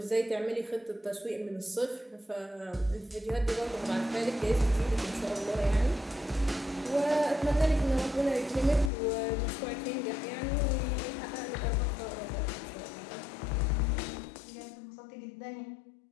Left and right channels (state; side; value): drops out; right; at 8.9 s